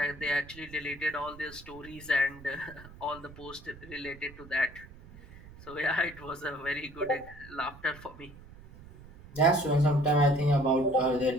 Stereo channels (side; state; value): right; noise; rumble, 19 dB below the sound